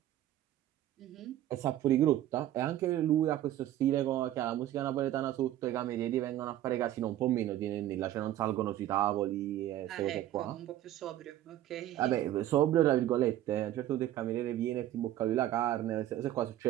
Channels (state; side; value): quieter; left; 13.1 dB